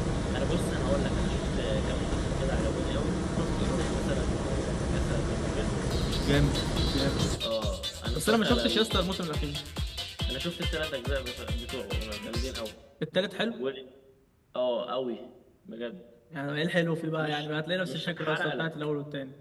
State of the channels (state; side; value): identical; both; correlation 1.00